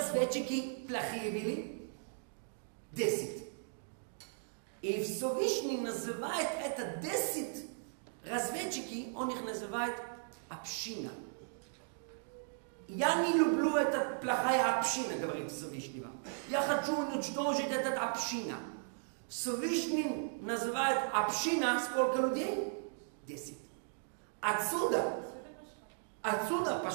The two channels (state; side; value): silent; left; digital silence